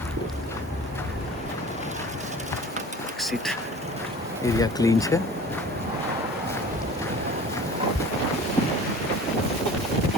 સીટ એરિયા ક્લીન છે.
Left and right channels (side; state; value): both; normal; correlation 0.41